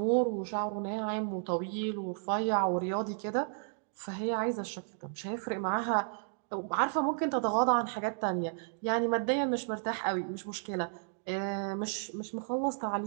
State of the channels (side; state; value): left; silent; 56 dB below the other